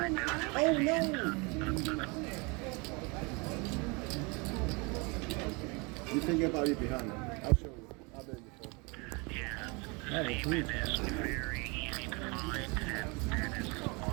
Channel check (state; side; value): quieter; left; 29.3 dB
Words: Oh no! You think about it behind me. I'll show you. I've been before. That is huge.